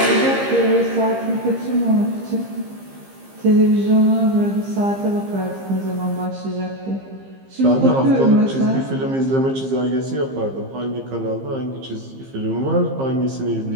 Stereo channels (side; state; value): left; late; 15 ms